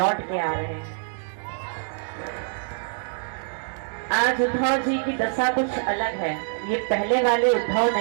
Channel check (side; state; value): left; silent; digital silence